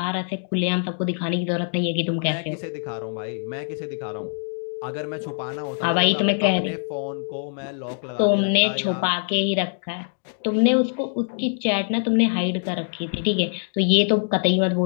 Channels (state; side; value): silent; right; 63 dB below the other